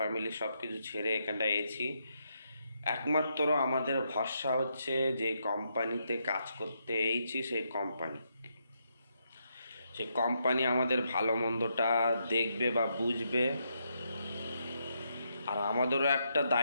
সব কিছু ছেড়ে এখানটায় এসেছি। একমাত্র আমাদের ভরসা হচ্ছে যে কোম্পানিতে কাজ করতে এসেছি, সেই কোম্পানি আমাদের ভালো মন্দটা দেখবে বা বুঝবে। আর আমাদেরও একটা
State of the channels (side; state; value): both; inverted; correlation -0.79